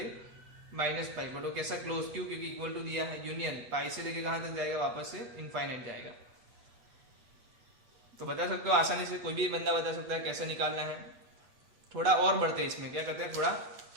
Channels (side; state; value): left; late; 8.1 ms